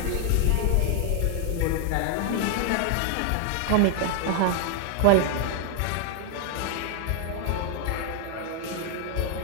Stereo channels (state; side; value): different; both; correlation 0.00